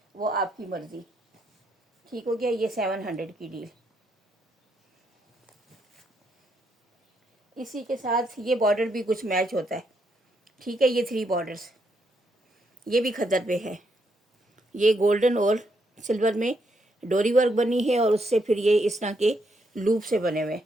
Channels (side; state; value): both; normal; correlation 0.77